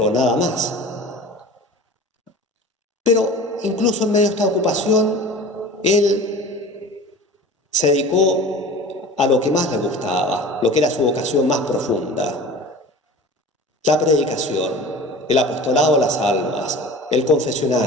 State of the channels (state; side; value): normal; both; correlation 0.38